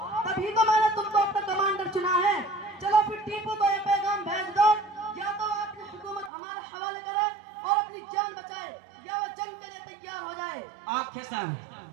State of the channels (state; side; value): drops out; left; at 6.3 s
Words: तभी तो मैंने तुमको अपना कमांडर चुना है। चलो फिर टीपू को ये पैगाम भेज दो, या तो अपनी हुकूमत हमारे हवाले करे और अपनी जान बचाए, या वो जंग के लिए तैयार हो जाए। Okay sir.